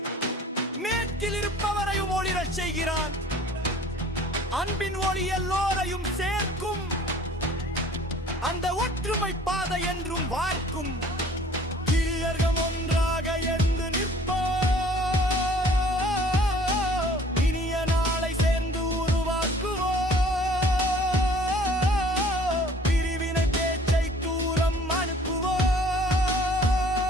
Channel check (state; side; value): normal; both; correlation 0.52